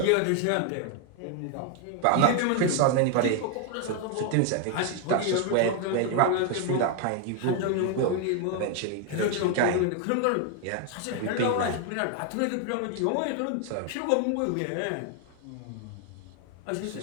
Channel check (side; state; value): both; different; correlation 0.01